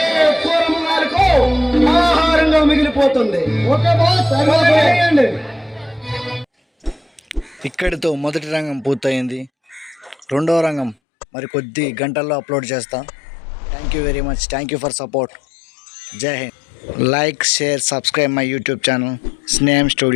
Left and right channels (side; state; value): right; drops out; at 11.0 s